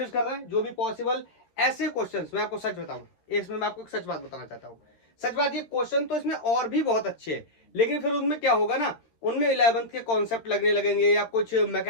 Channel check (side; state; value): right; late; 13 ms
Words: कर रहे हैं जो भी पॉसिबल। ऐसे क्वेश्चंस मैं आपको सच बताऊं, इसमें मैं आपको एक सच बात बताना चाहता हूं, सच बात ये क्वेश्चन तो इसमें और भी बहुत अच्छे हैं, लेकिन फिर उनमें क्या होगा ना, उनमें 11th के कॉन्सेप्ट लगने लगेंगे या कुछ